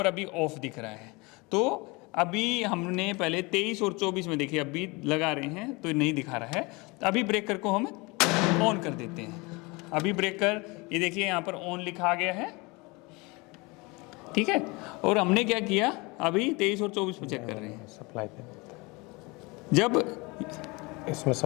अभी ऑफ दिख रहा है। तो अभी हमने पहले 23 और 24 में देखिए, अभी लगा रहे हैं तो नहीं दिखा रहा है। अभी ब्रेकर को हम ऑन कर देते हैं। अभी ब्रेकर, ये देखिए यहाँ पर ऑन लिखा गया है, ठीक है। और हमने क्या किया, अभी 23 और 24 में चेक कर रहे हैं। सप्लाई पे जब इसमें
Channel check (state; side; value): quieter; right; 25.9 dB